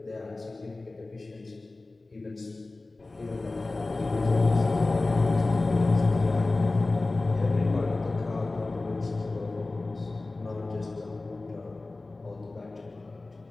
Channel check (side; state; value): right; quieter; 3.2 dB